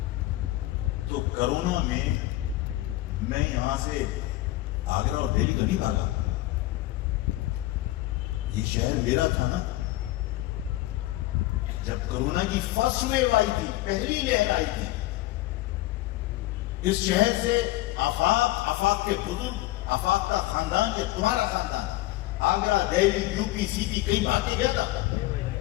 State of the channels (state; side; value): quieter; right; 17.4 dB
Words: تو کرونا میں یہاں سے آگرہ اور دہلی تو نہیں بھاگا. یہ شہر میرا تھا نا. جب کرونا کی فرسٹ ویو آئی تھی, پہلی لہر آئی تھی, اس شہر سے آفاق کے بزرگ, آفاق کا خاندان, یہ تمہارا خاندان, آگرہ, دہلی, یو پی, سی پی کئی بار کے گیا تھا.